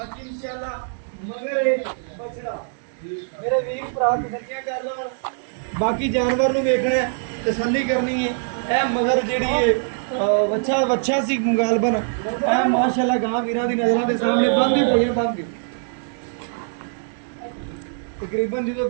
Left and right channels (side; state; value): left; silent; digital silence